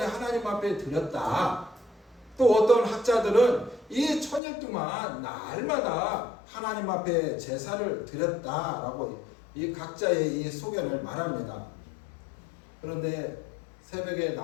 하나님 앞에 드렸다. 또 어떤 학자들은 이 1,000일 동안 날마다 하나님 앞에 제사를 드렸다라고 이 각자의 이 소견을 말합니다. 그런데 새벽에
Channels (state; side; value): drops out; right; at 4.4 s